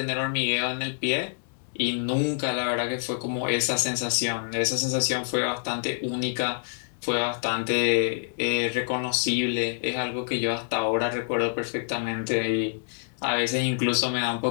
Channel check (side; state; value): right; silent; digital silence